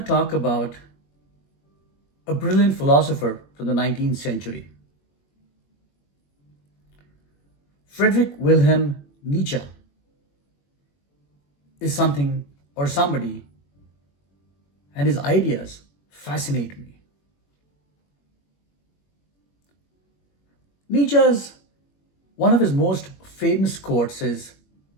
talk about a brilliant philosopher from the 19th century, Friedrich Wilhelm Nietzsche is something or somebody, and his ideas fascinate me. Nietzsche's one of his most famous quotes is,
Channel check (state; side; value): late; right; 21 ms